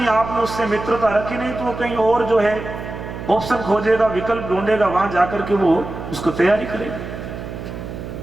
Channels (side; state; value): right; noise; hum, 9 dB below the sound